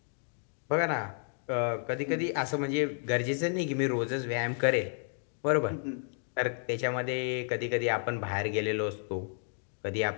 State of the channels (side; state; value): right; silent; 57 dB below the other